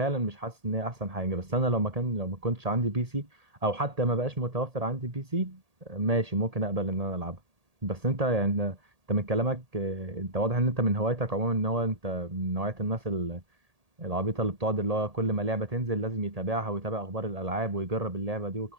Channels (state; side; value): late; left; 1.8 ms